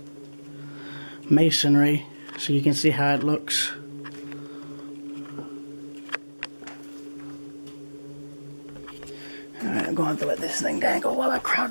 masonry, so you can see how it looks. Alright, I'm going to have to let this thing dangle while I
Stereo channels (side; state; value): both; inverted; correlation -1.00